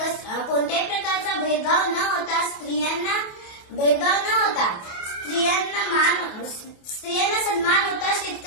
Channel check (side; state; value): right; late; 28 ms